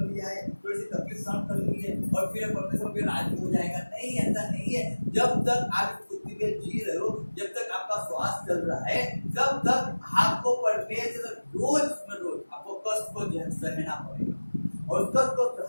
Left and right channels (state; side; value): inverted; both; correlation -1.00